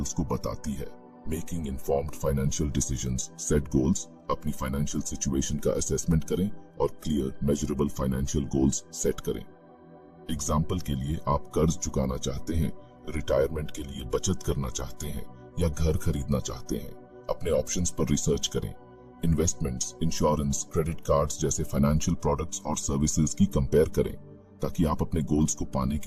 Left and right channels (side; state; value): both; identical; correlation 1.00